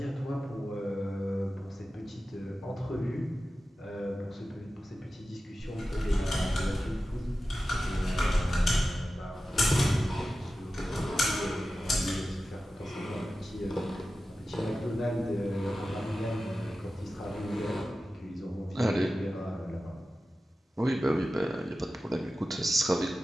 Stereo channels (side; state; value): both; normal; correlation 0.94